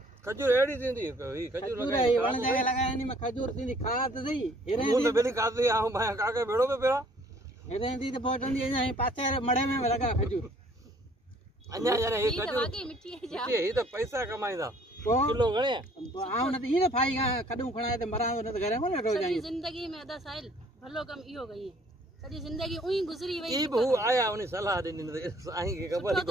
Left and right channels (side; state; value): both; normal; correlation 0.59